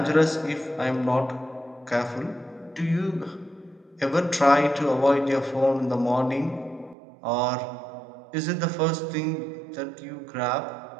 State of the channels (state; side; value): drops out; left; at 7.0 s